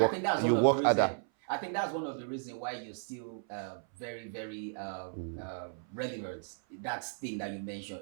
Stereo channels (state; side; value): silent; left; 55 dB below the other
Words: I think that's one of the reasons why you're still very, very relevant. That thing that you mentioned,